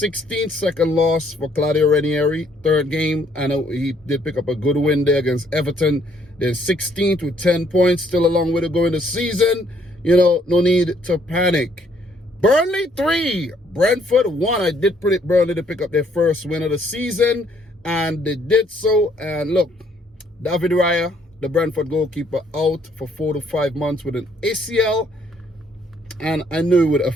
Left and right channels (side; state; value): both; normal; correlation 0.66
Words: second loss for Claudio Ranieri, third game. I know he did pick up a good win there against Everton. They're 16th with 10 points, still a long way to go in the season. You know, no need to panic. Burnley 3, Brentford 1. I did predict Burnley to pick up their first win of the season, and they did so. And look, David Raya, the Brentford goalkeeper, out for 4 to 5 months with an ACL, and I knew it would